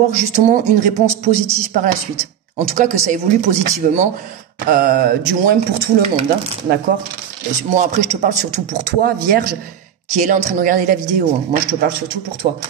justement une réponse positive par la suite. En tout cas, que ça évolue positivement, du moins pour tout le monde, hein, d'accord? Moi, après, je te parle surtout pour toi, vierge, qui est là en train de regarder la vidéo. Hein. Moi, je te parle surtout pour toi.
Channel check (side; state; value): left; quieter; 9.4 dB